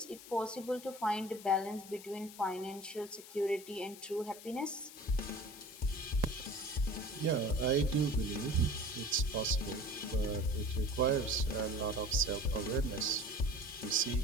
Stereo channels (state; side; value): noise; left; hiss, 16 dB below the sound